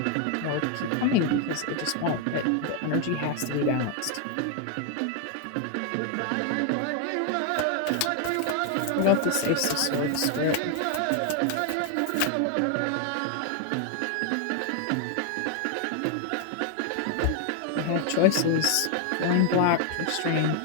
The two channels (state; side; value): different; both; correlation 0.00